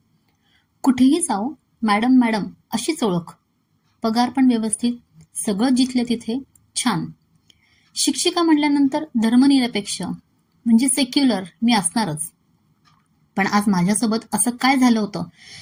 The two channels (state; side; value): identical; both; correlation 1.00